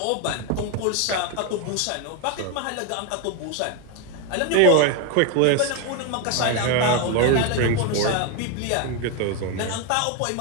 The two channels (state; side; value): different; both; correlation 0.01